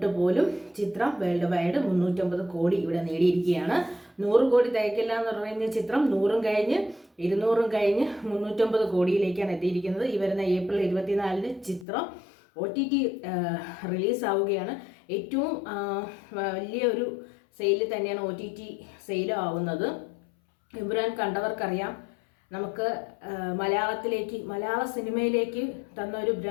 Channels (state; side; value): drops out; right; at 11.9 s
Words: പോലും ചിത്രം വേൾഡ് വൈഡ് 350 കോടി ഇവിടെ നേടിയിരിക്കുകയാണ്. 100 കോടി തികക്കില്ല എന്ന് പറയുന്ന ചിത്രം 100 കഴിഞ്ഞ് 200 കഴിഞ്ഞ് 350 കോടിയിലേക്കാണ് എത്തിയിരിക്കുന്നത്. ഈ വരുന്ന ഏപ്രിൽ 24 ചിത്രം OTT റിലീസാവുകയാണ്. ഏറ്റവും വലിയൊരു സെയിൽ തന്നെയാണ് OTT സെയിൽ ആവുന്നത്. എമ്പുരാൻ കണ്ടവർക്കറിയാം. നമുക്ക് മലയാള സിനിമയിലേക്ക് തന്ന ഒരു